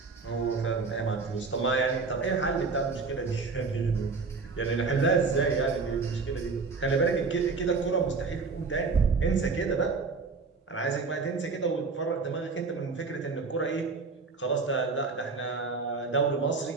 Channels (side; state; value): left; quieter; 4.4 dB